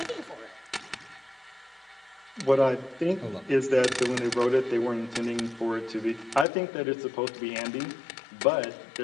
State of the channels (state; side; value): drops out; right; at 6.5 s